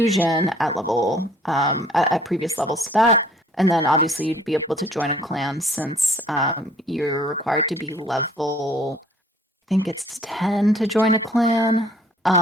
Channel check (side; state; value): both; normal; correlation 0.57